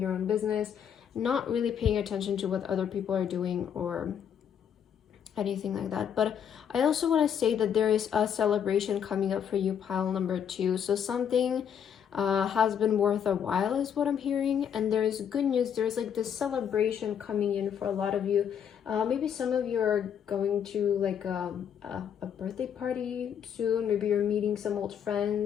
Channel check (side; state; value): right; quieter; 8.4 dB